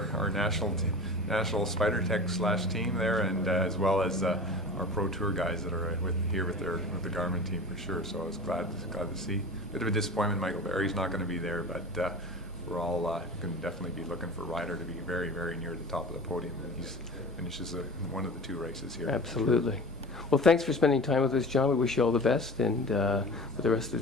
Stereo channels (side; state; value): both; normal; correlation 0.35